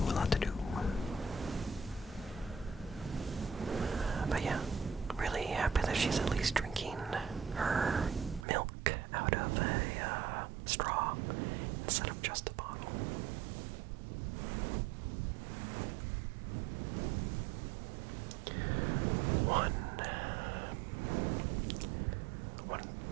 But yeah, really happy that she's at least drinking her milk out of a straw instead of just a bottle. One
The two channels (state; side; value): drops out; left; at 8.5 s